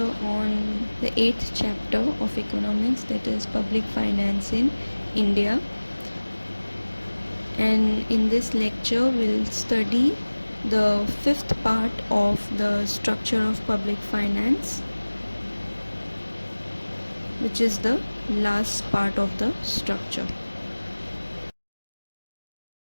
on the 8th chapter of economics, that is public finance in India. And in this lecture we'll study the fifth part of the structure of public finance, which is the last part of the structure.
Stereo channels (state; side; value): inverted; both; correlation -1.00